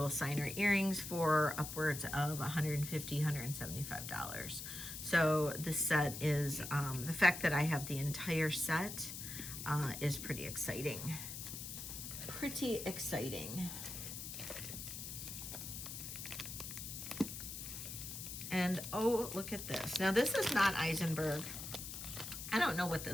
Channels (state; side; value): noise; left; hiss, 8 dB below the sound